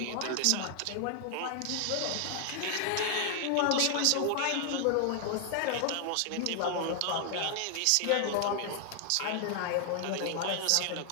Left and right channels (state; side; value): different; both; correlation 0.00